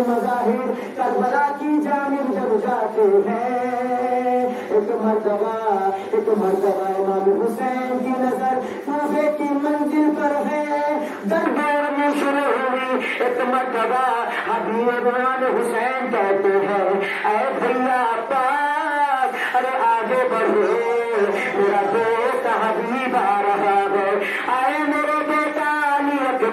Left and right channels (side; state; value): both; identical; correlation 1.00